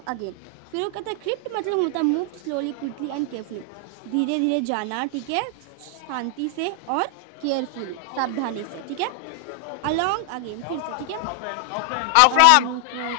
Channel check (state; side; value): different; both; correlation 0.00